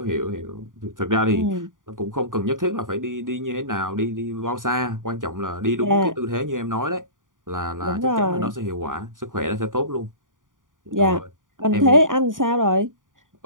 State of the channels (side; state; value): left; late; 0.89 ms